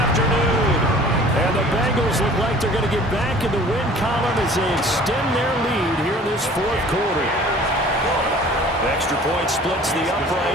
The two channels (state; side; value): normal; both; correlation 0.48